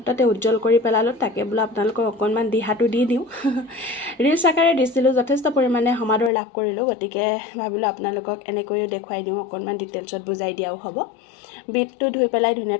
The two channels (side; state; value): right; drops out; at 6.3 s